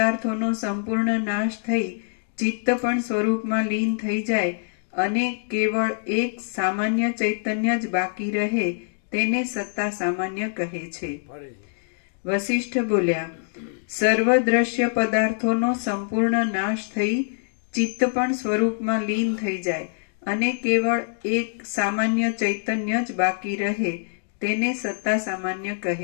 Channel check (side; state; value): right; silent; digital silence